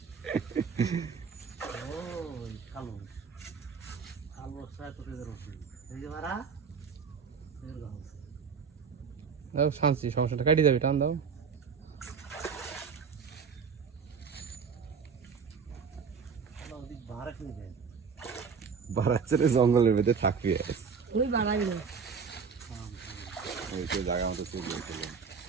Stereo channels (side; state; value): left; quieter; 5.9 dB